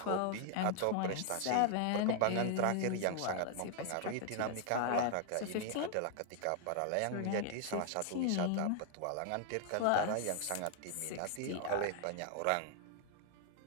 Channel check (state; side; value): different; both; correlation 0.00